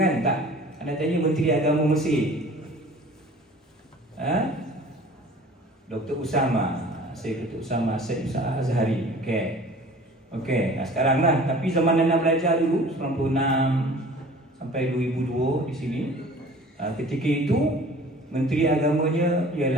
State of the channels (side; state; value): both; normal; correlation 0.46